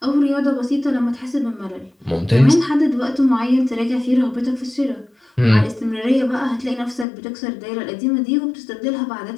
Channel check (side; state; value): right; drops out; at 7.1 s